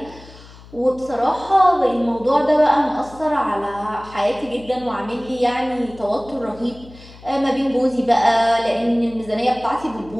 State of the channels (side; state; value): left; noise; hum, 20 dB below the sound